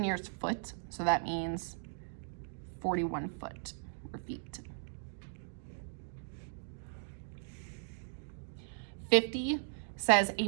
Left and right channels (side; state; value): left; silent; digital silence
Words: foot, so that means 41 foot or feet. 50 says a